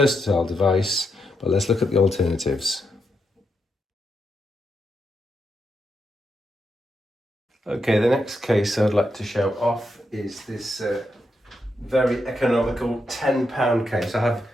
device, but let's look at the alternatives. Okay, the next case I'd like to show off is this very economical £10 case. I have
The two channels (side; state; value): both; normal; correlation 0.83